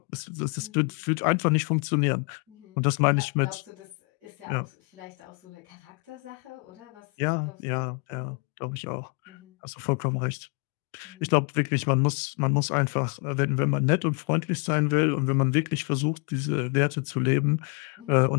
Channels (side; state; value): right; quieter; 33.7 dB